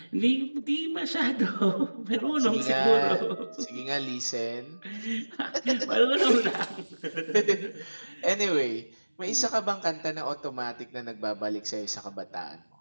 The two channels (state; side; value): inverted; both; correlation -1.00